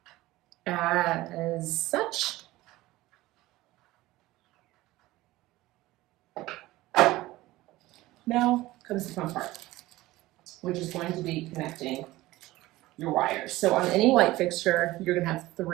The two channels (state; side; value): quieter; left; 17.9 dB